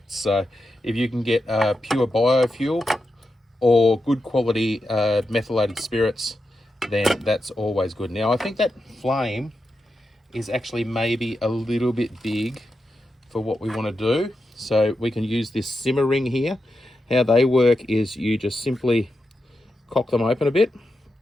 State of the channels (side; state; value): both; normal; correlation 0.88